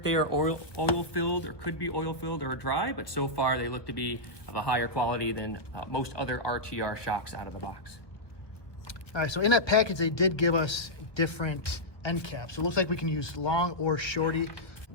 they are oil filled or could be oil filled or dry, but so far they look to be of a higher quality than most other RTR shocks out of the box. All right, so in that package, they did give us different end caps. So it looks like we can use long or shorty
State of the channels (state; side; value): late; right; 1.0 ms